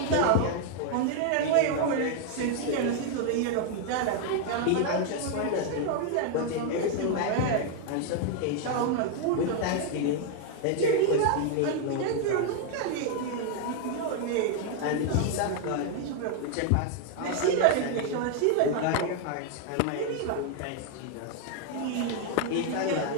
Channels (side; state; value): both; different; correlation 0.00